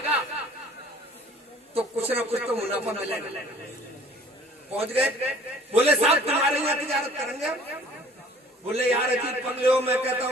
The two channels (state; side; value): normal; both; correlation 0.52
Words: तो कुछ ना कुछ तो मुनाफा मिलेगा। पहुंच गए, बोले साहब तुम्हारे यहाँ तिजारत करेंगे। बोले यार अजीब पगले हो, मैं कहता